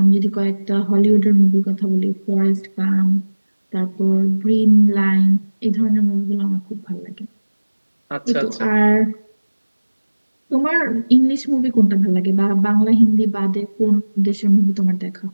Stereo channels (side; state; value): both; inverted; correlation -1.00